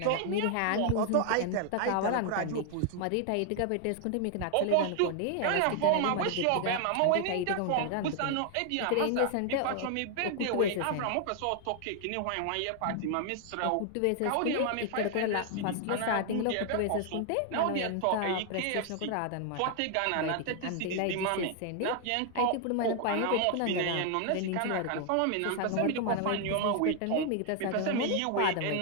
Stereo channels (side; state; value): both; different; correlation 0.00